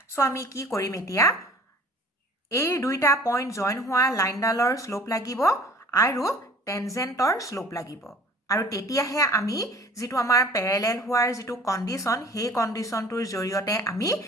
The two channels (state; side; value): normal; both; correlation 0.48